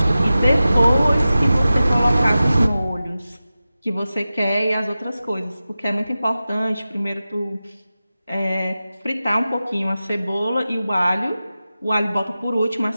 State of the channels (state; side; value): inverted; both; correlation -0.94